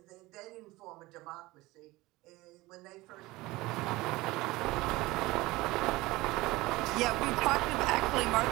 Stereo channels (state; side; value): quieter; left; 20.2 dB